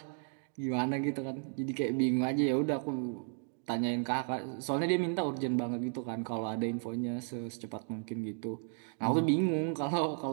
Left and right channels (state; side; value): silent; left; 55 dB below the other